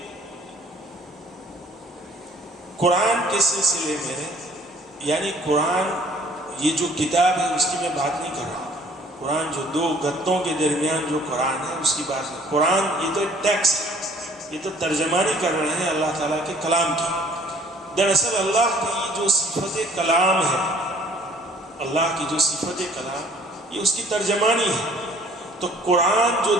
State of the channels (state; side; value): normal; both; correlation 0.57